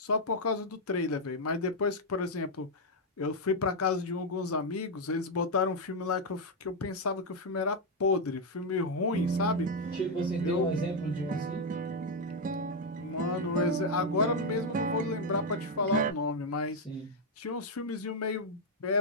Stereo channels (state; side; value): normal; both; correlation 0.01